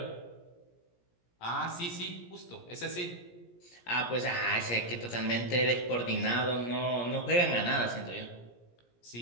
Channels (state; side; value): late; right; 17 ms